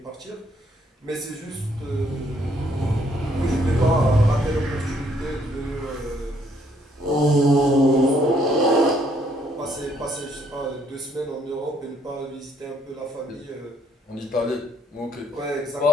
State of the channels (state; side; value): normal; both; correlation 0.68